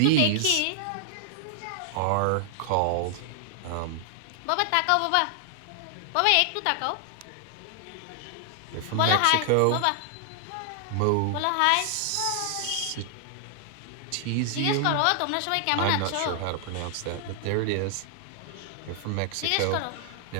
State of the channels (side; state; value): both; different; correlation 0.00